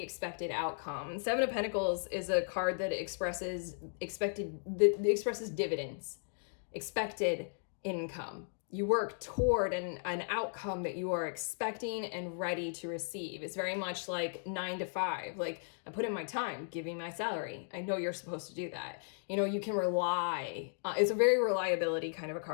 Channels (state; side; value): silent; right; digital silence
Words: expected outcome. Seven of Pentacles is a card that expresses dividends, expected income. You work toward an outcome that you are expecting and ready to receive. It's very much like 9 to 5. Like, I put in my time, giving my salary. I know you're supposed to do that. You can rely. It's a very reliability kind of a